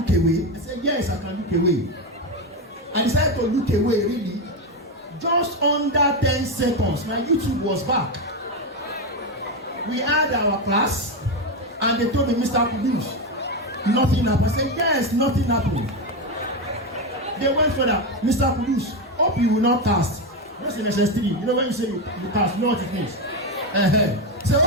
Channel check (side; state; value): both; normal; correlation 0.11